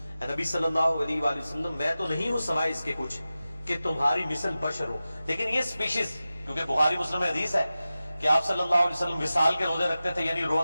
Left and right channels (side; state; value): both; inverted; correlation -0.95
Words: اے نبی صلی اللہ علیہ وآلہ وسلم میں تو نہیں ہوں سوائے اس کے کچھ کہ تمہاری مثل بشر ہو۔ لیکن یہ سپیشیز، کیونکہ بخاری مسلم میں حدیث ہے کہ آپ صلی اللہ علیہ وسلم وصال کے روزے رکھتے تھے، یعنی